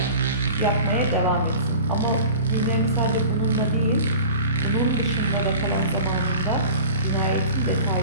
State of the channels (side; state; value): both; inverted; correlation -0.41